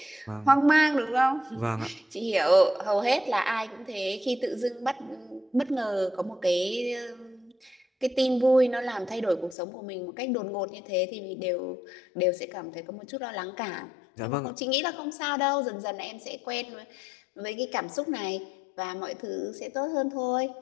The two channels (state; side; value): drops out; right; at 9.6 s